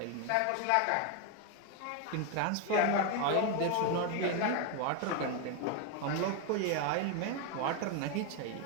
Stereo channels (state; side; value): different; both; correlation 0.01